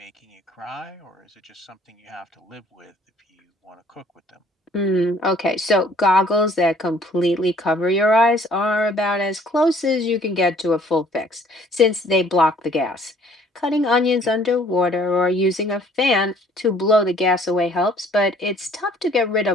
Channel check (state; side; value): normal; both; correlation 0.58